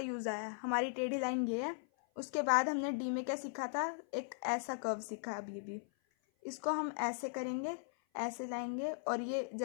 आया, हमारी टेढ़ी लाइन ये है। उसके बाद हमने डी में क्या सीखा था, एक ऐसा कर्व सीखा। अब ये भी, इसको हम ऐसे करेंगे, ऐसे लाएंगे, और ये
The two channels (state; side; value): silent; right; 52 dB below the other